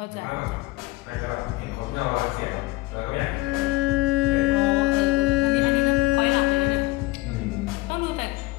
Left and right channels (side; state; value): right; quieter; 20.3 dB